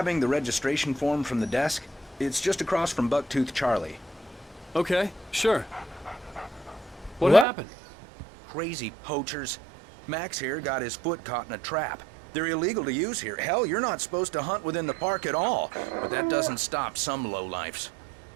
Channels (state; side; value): drops out; left; at 7.5 s